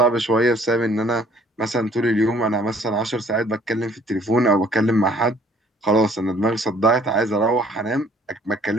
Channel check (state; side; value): normal; both; correlation 0.58